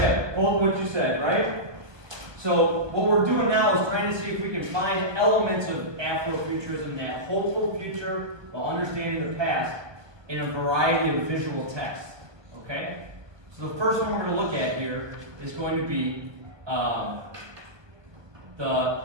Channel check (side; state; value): left; late; 1.2 ms